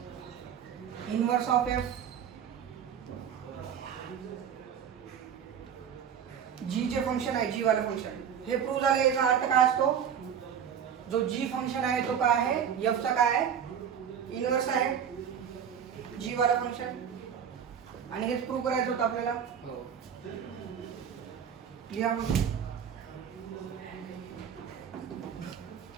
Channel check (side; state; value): left; quieter; 8.2 dB